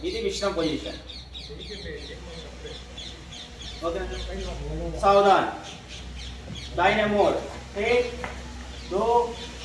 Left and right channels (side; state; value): both; identical; correlation 1.00